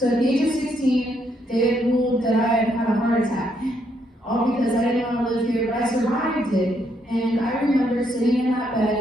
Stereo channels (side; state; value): both; normal; correlation 0.74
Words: at the age of 16, they had ruled that I had had a heart attack. All because I didn't want to live here, but I survived it. And I remember sitting in that